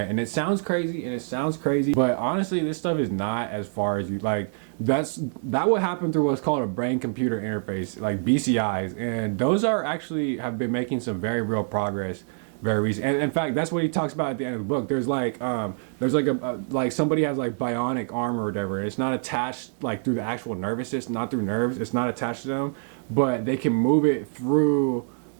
And it sounds crazy, but honestly, this stuff is not as far as you like. That would happen through what's called a brain computer interface, like BCIs, and those have been making some very real progress very recent. And in fact, that's what he talks about at the end of the book. There's like like somebody has like bionic arm or whatever. It's not attached like through the actual nervous system, not through nerves. It's not attached to them, but they can move it through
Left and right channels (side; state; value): left; silent; digital silence